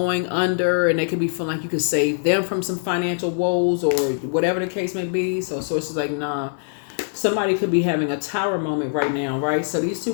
under, and they could be feeling like you could save them from some financial woes or whatever the case may be. So Source is like, nah. Somebody could be having a tower moment right now, right? So these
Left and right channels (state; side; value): silent; right; 64 dB below the other